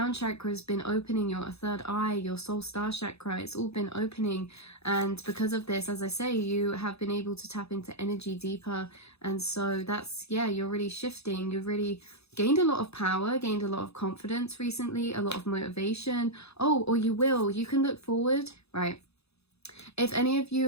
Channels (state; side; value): late; right; 0.79 ms